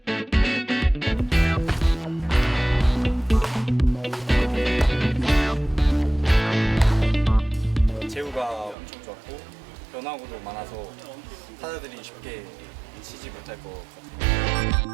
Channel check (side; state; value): left; drops out; at 8.8 s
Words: 제구가 엄청 좋았고 변화구도 많아서 타자들이 쉽게 치지 못할 것 같아요.